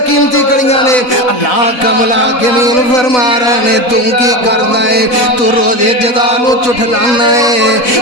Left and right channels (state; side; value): late; right; 4.0 ms